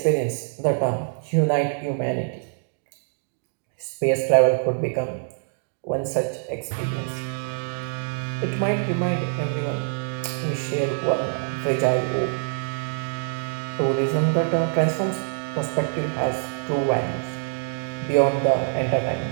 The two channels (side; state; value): left; silent; 62 dB below the other